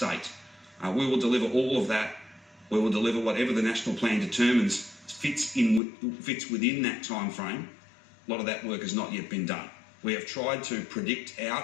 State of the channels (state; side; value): drops out; right; at 5.8 s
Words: We will deliver all of that. We will deliver whatever the national plan determines fits within that time frame. A lot of that work has not yet been done. We have tried to predict